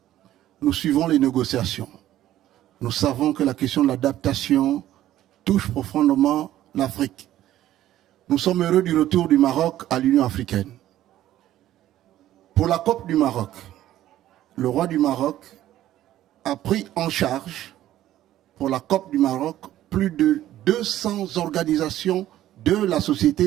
Nous suivons les négociations. Nous savons que la question de l'adaptation touche profondément l'Afrique. Nous sommes heureux du retour du Maroc à l'Union africaine. Pour la COP du Maroc, le roi du Maroc a pris en charge, pour la COP du Maroc, plus de 200 organisations de la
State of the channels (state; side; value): quieter; left; 13.3 dB